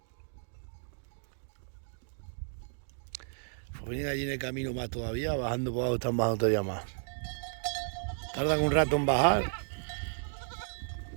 Pues vienen allí en el camino más todavía, bajando por abajo están bajando todavía más. Tardan un rato en bajar.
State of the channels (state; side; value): silent; left; digital silence